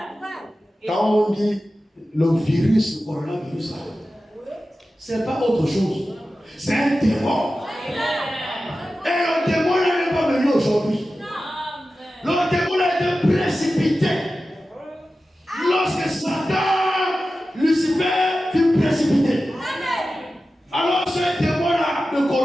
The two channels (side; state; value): both; normal; correlation 0.94